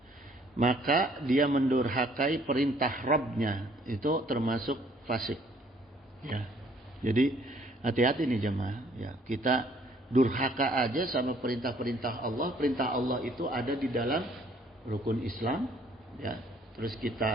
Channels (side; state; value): both; normal; correlation 0.61